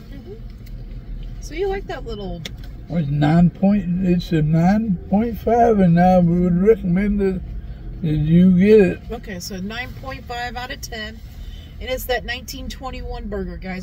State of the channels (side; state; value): both; identical; correlation 1.00